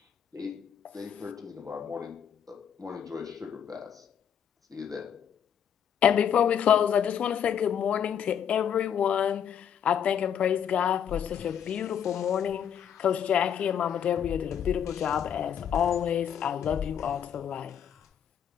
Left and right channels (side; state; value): right; quieter; 8.6 dB